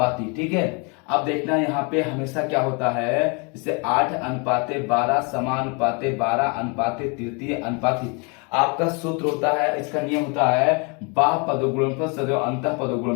ठीक है, अब देखना यहाँ पे हमेशा क्या होता है, जैसे 8 अनुपाते 12 समानुपाते 12 अनुपाते तृतीय अनुपाती। आपका सूत्र होता है, इसका नियम होता है बाह्य पदों गुणनफल सदैव अंतः पदों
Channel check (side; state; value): right; quieter; 32.4 dB